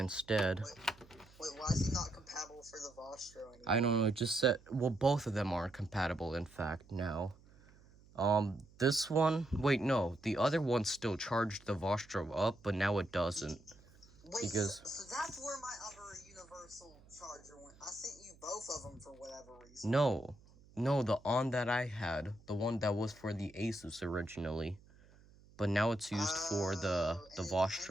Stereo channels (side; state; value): right; noise; hum, 25 dB below the sound